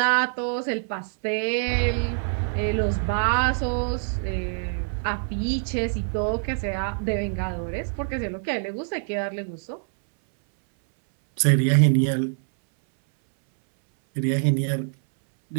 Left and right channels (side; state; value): left; silent; 62 dB below the other